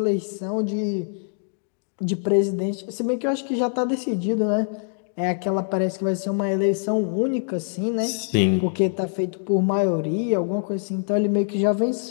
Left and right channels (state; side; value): silent; right; digital silence